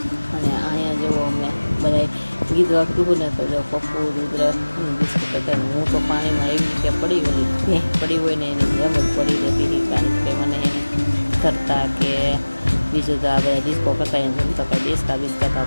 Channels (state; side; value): inverted; both; correlation -1.00